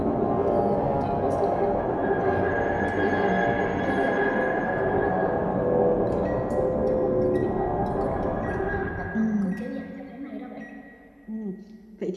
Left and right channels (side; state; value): both; identical; correlation 1.00